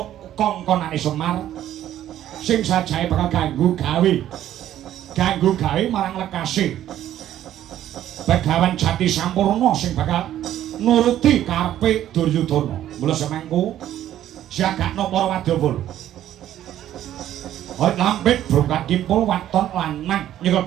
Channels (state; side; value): quieter; left; 12.0 dB